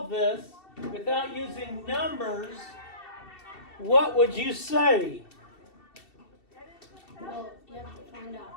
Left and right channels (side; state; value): right; late; 2.7 ms